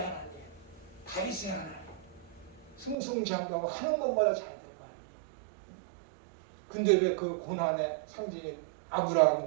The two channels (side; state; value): left; drops out; at 3.0 s